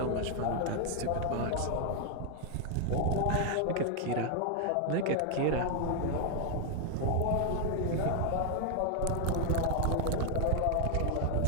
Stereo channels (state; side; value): different; both; correlation 0.00